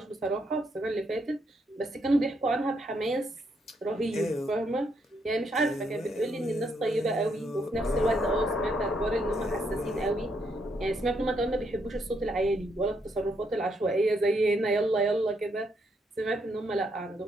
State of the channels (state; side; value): normal; both; correlation 0.75